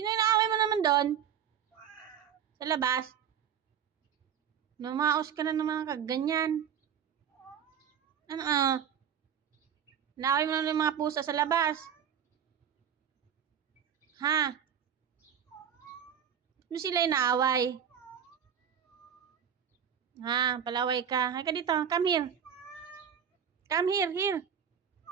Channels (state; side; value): quieter; left; 8.5 dB